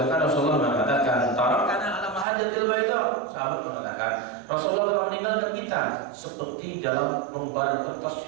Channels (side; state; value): left; drops out; at 2.2 s